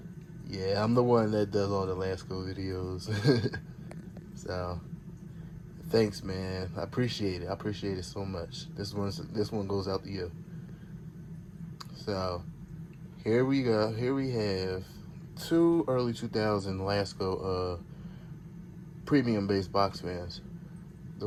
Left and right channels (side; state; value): both; identical; correlation 1.00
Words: yeah, I'm the one that does all the Lasko videos. So thanks, man. I appreciate it. I appreciate it so much. This one goes out to you. So here we go. Here we have two early 2000 Lasko premium based box fans.